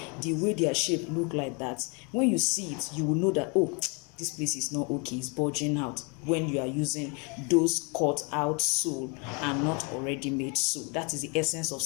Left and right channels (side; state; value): right; quieter; 33.1 dB